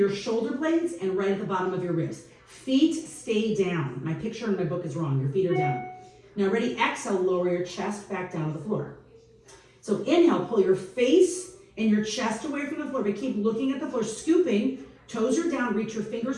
shoulder blades and right at the bottom of your ribs. Feet stay down. My picture in my book is wrong. Your feet are down. Now ready, exhale, lower your chest back down to the floor. So inhale, pull your face and your chest away from the floor, but keep looking at the floor, scooping, toes are down, reach your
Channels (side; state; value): both; identical; correlation 1.00